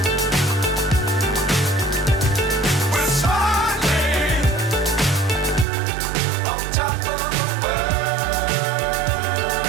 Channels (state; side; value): drops out; left; at 5.7 s